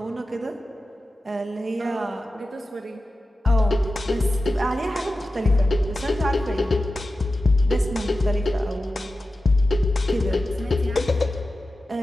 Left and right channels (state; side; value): normal; both; correlation 0.93